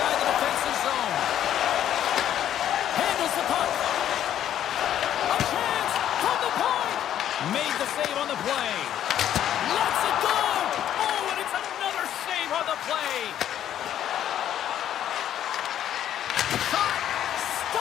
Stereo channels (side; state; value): right; quieter; 10.9 dB